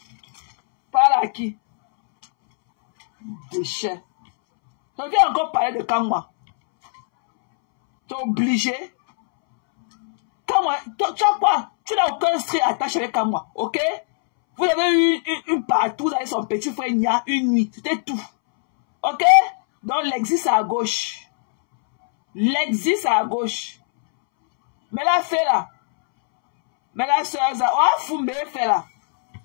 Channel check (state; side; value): silent; right; 65 dB below the other